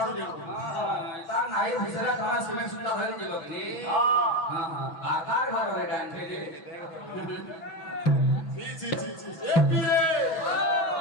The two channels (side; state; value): right; late; 6.1 ms